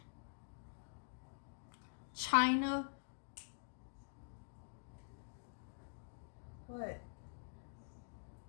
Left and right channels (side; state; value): right; silent; digital silence